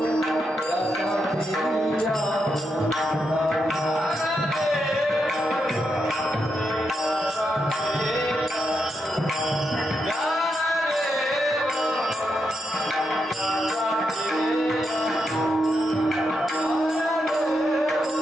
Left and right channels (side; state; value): both; normal; correlation 0.83